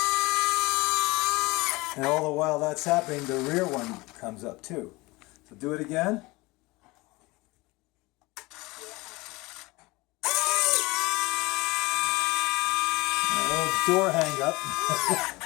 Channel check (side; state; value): right; quieter; 22.7 dB